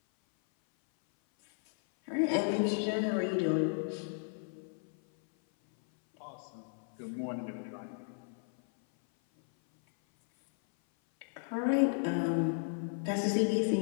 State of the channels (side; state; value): right; silent; 55 dB below the other